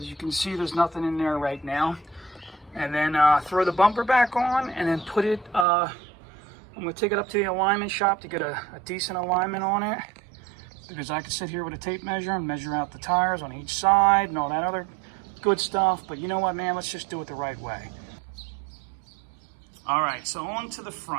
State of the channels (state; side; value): drops out; left; at 5.7 s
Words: you can see, there's nothing in there right now. And then throw the bumper back on, and then put it, I'm going to take it up to the alignment shop to get a decent alignment on it, because I can sit here with a tape measure and measure out the tires on each side and all that other good stuff. But you know what, man, let's just do it the right way. All right, so on to the